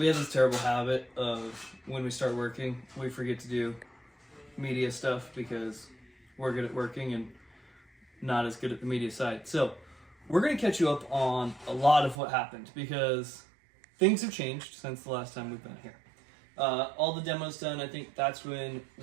have this terrible habit of when we start working, we forget to do media stuff because we're good at working and not as good at the media side. So we're going to catch you up on a lot of what happened because things have changed since the last time we've been here. All the demos done, I think that's when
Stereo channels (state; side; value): drops out; left; at 12.2 s